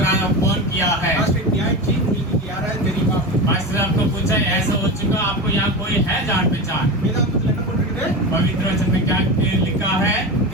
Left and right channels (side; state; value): both; normal; correlation 0.24